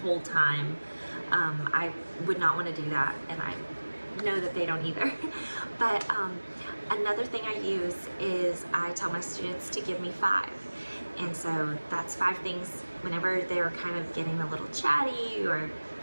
time. I would not want to do that, and I know that they don't either. But another thing I use is I tell my students to give me 5. And so that's 5 things whenever they're kind of getting a little chatty or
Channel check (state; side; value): inverted; both; correlation -1.00